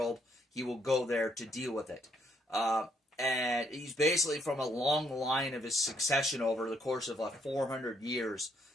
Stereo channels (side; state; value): both; normal; correlation 0.71